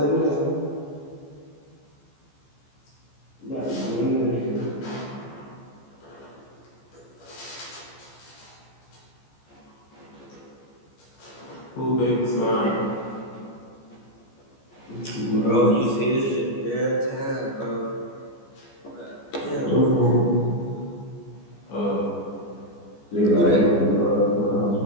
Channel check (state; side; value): late; right; 14 ms